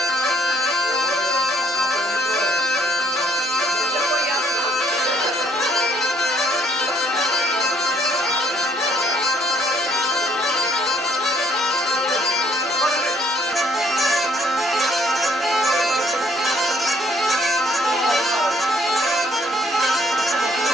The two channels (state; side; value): normal; both; correlation 0.65